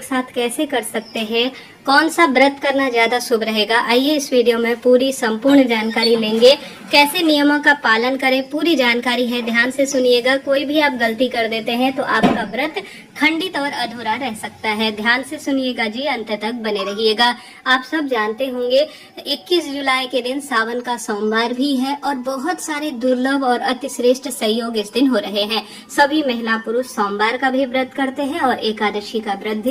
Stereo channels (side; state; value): both; identical; correlation 1.00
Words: साथ कैसे कर सकते हैं, कौन सा व्रत करना ज्यादा शुभ रहेगा, आइए इस वीडियो में पूरी संपूर्ण जानकारी लेंगे। कैसे नियमों का पालन करें, पूरी जानकारी है, ध्यान से सुनिएगा। कोई भी आप गलती कर देते हैं तो आपका व्रत खंडित और अधूरा रह सकता है। ध्यान से सुनिएगा जी, अंत तक बने रहिएगा। आप सब जानते होंगे 21 जुलाई के दिन सावन का सोमवार भी है और बहुत सारे दुर्लभ और अतिश्रेष्ठ संयोग इस दिन हो रहे हैं। सभी महिला पुरुष सोमवार का भी व्रत करते हैं और एकादशी का व्रत